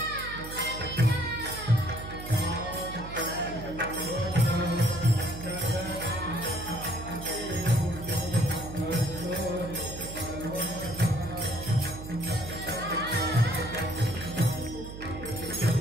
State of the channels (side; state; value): right; noise; hum, 11 dB below the sound